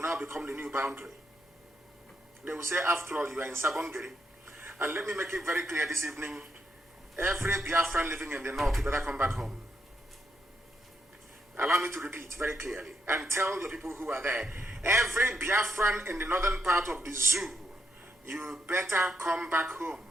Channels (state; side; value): normal; both; correlation 0.79